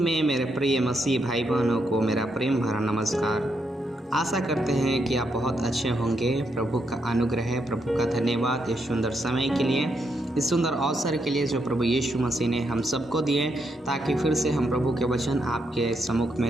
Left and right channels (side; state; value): both; normal; correlation 0.79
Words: में मेरे प्रिय मसीह भाई बहनों को मेरा प्रेम भरा नमस्कार। आशा करते हैं कि आप बहुत अच्छे होंगे। प्रभु का अनुग्रह है, प्रभु का धन्यवाद इस सुंदर समय के लिए, इस सुंदर अवसर के लिए जो प्रभु यीशु मसीह ने हम सबको दिए, ताकि फिर से हम प्रभु के वचन आपके सम्मुख में